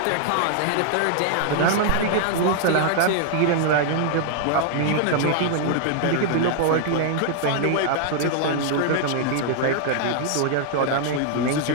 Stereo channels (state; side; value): different; both; correlation -0.01